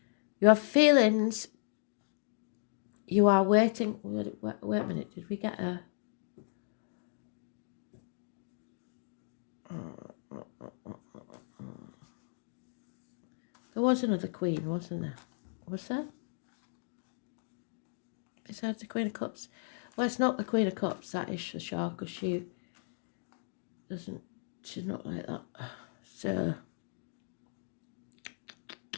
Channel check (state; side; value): silent; right; digital silence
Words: You have feelings. You are waiting. Wait a minute. Did we get a... There was another queen, wasn't there? Was there? Besides the Queen of Cups? Well, it's not the Queen of Cups, that is for sure, because she doesn't... She's not like that. So...